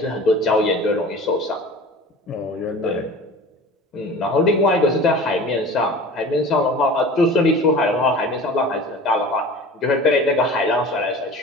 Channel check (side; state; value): both; normal; correlation 0.39